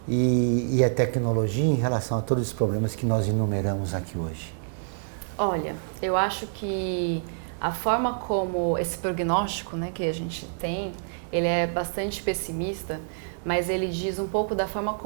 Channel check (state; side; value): silent; left; digital silence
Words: e a tecnologia em relação a todos os problemas que nós enumeramos aqui hoje? Olha, eu acho que a forma como esse prognóstico, né, que a gente tem, ele é bastante pessimista, mas ele diz um pouco da forma